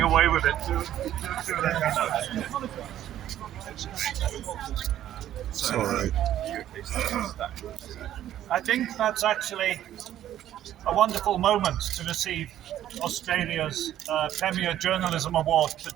away with it, do let me know. Sorry. I think that's actually a wonderful moment to receive Australia's Premier Journalism Award for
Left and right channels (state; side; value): quieter; left; 12.0 dB